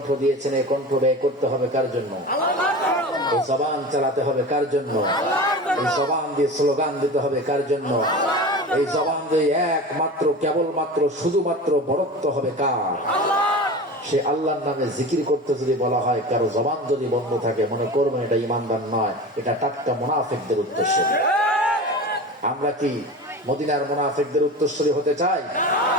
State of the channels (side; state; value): both; normal; correlation 0.32